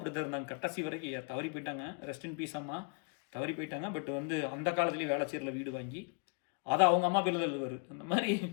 தான் இருந்தாங்க கடைசி வரைக்கும். தவறி போயிட்டாங்க, ரெஸ்ட் இன் பீஸ் அம்மா, தவறி போயிட்டாங்க. பட் வந்து அந்த காலத்துலேயே வேளச்சேரியில் வீடு வாங்கி அதை அவங்க அம்மா பேரில் தான் எழுதுவார். அந்த மாதிரி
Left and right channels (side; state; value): right; quieter; 36.9 dB